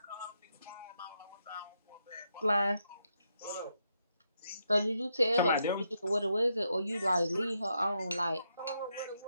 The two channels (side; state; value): both; inverted; correlation -0.80